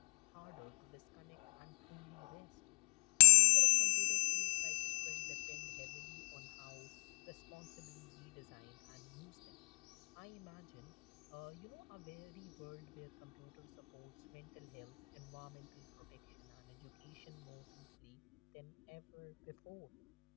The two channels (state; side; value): quieter; right; 34.9 dB